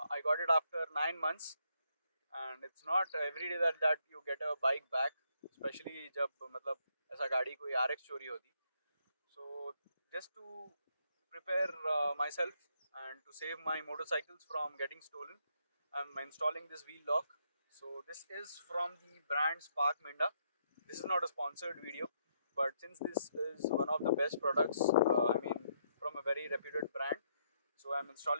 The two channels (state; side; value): inverted; both; correlation -0.75